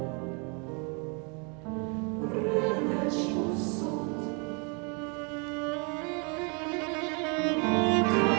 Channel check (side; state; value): left; quieter; 34.9 dB